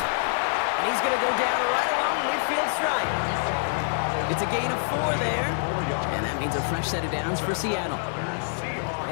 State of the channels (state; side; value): silent; right; digital silence